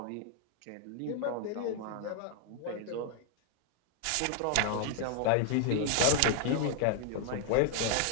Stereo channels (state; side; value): different; both; correlation 0.00